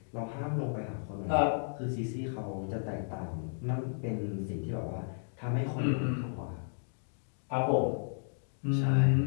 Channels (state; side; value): silent; right; digital silence